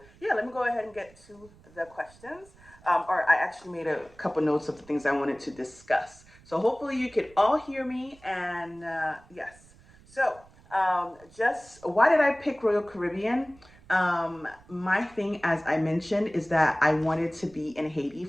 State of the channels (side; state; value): right; noise; rumble, 26 dB below the sound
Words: yeah, let me go ahead and get to the questions. Or I actually made a couple notes of the things I wanted to discuss. So hopefully you can all hear me. And yes, so just why did I pick Royal Caribbean? My thing, as I mentioned, is that I wanted to be in Haiti